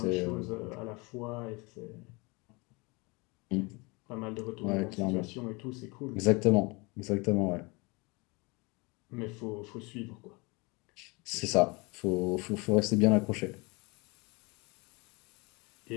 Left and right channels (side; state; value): right; quieter; 27.4 dB